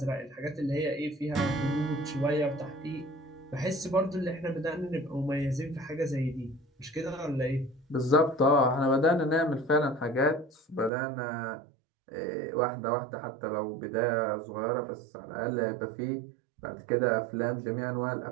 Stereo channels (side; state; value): left; drops out; at 10.9 s